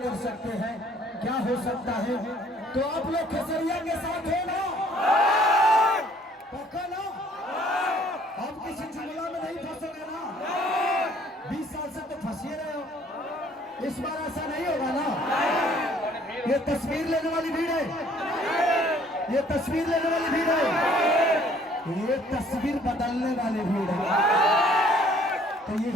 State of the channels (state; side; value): normal; both; correlation 0.59